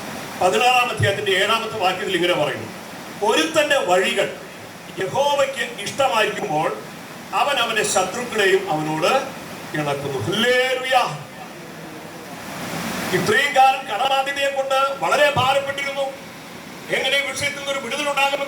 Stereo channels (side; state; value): both; identical; correlation 1.00